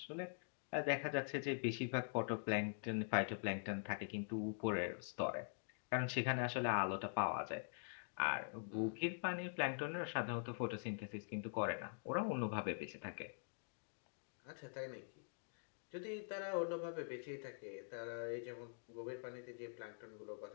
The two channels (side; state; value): right; silent; digital silence